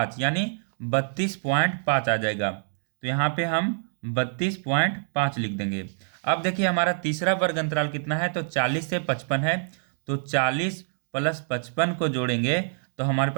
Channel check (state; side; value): silent; left; digital silence